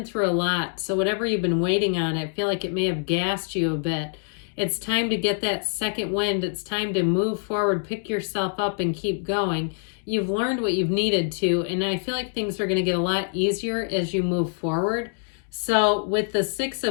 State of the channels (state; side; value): silent; right; digital silence